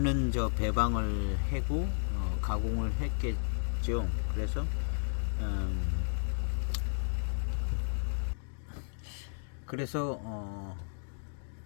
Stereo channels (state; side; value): silent; right; digital silence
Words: 저 배방을 해고 가공을 했겠죠. 그래서